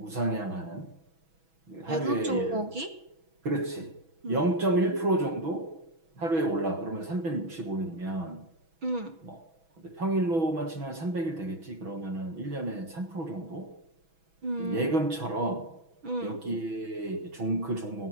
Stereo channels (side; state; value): left; late; 6.1 ms